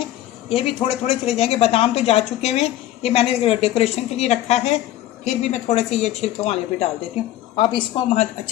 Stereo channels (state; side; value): quieter; right; 13.9 dB